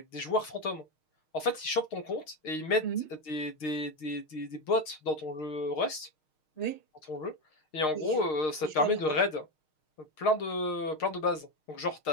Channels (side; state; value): right; late; 6.5 ms